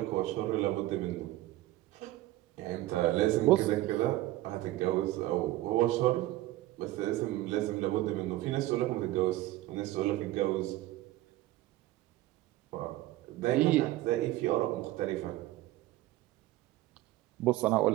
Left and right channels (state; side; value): quieter; left; 16.5 dB